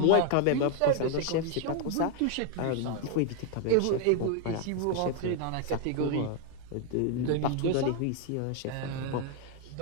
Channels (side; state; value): both; different; correlation 0.00